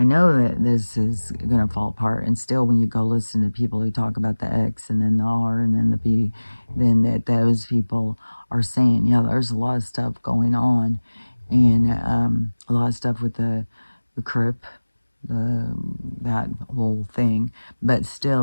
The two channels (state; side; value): inverted; both; correlation -1.00